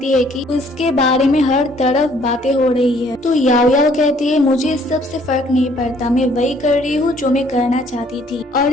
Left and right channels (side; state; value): both; normal; correlation 0.61